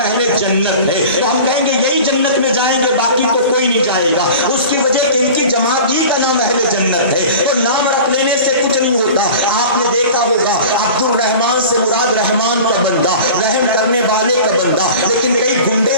جنت ہے، تو ہم کہیں گے یہی جنت میں جائیں گے، باقی تو کوئی نہیں جائے گا۔ اس کی وجہ کہ ان کی جماعت ہی کا نام اہل جنت ہے، تو نام رکھ لینے سے کچھ نہیں ہوتا۔ آپ نے دیکھا ہوگا عبد الرحمان سے مراد رحمان کا بندہ، رحم کرنے والے کا بندہ، لیکن کئی گنڈے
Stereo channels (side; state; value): both; inverted; correlation -0.38